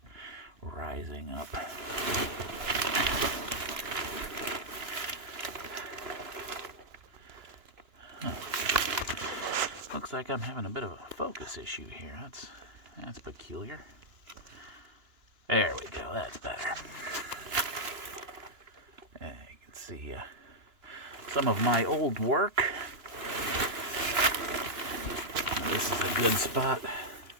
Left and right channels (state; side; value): late; left; 2.9 ms